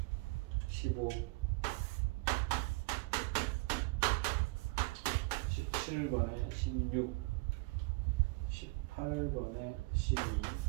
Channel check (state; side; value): quieter; left; 27.0 dB